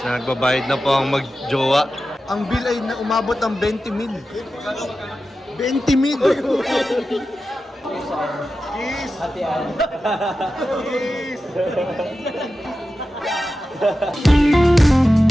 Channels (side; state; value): both; normal; correlation 0.92